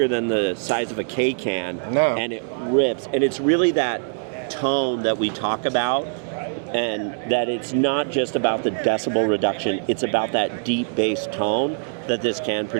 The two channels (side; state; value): left; silent; digital silence